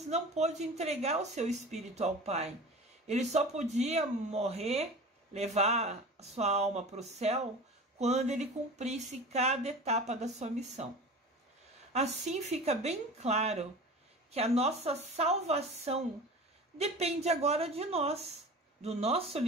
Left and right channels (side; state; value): both; normal; correlation 0.36